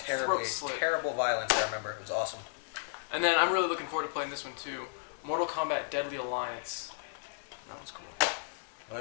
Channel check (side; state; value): right; silent; 55 dB below the other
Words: Throat slit. terrible violence. I remember it was awesome. And then I'm really looking forward to playing this one too. Mortal Kombat Deadly Alliance. That one's cool. I